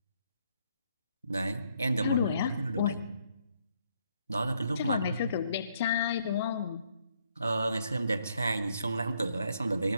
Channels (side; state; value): both; inverted; correlation -0.71